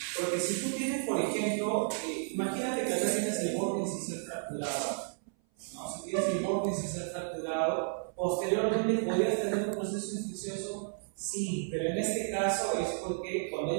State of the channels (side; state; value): left; silent; 56 dB below the other